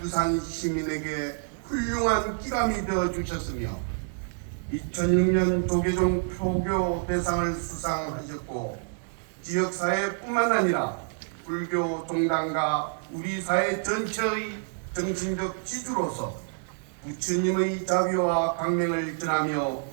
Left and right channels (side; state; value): left; silent; digital silence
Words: 시민에게 훌륭한 기감이 되어 주셨으며 2006년 조계종 표교 대상을 수상하셨고 지역사회뿐만 아니라 불교 종단과 우리 사회 전체의 정신적 지주로서 부처님의 자비와 광명을 전하며